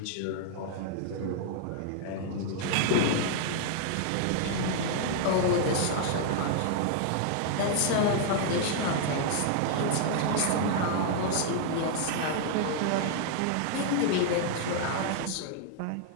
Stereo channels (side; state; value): both; different; correlation -0.01